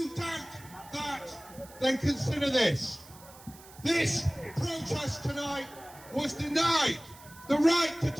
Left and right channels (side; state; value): right; noise; hiss, 21 dB below the sound